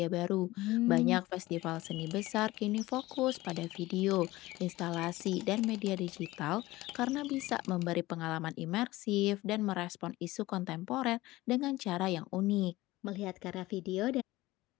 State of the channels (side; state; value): right; quieter; 18.5 dB